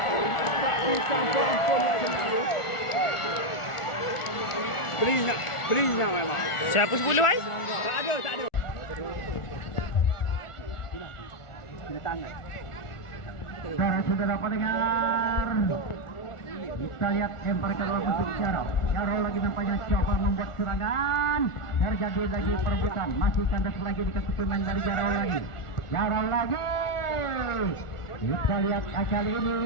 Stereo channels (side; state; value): right; late; 1.4 ms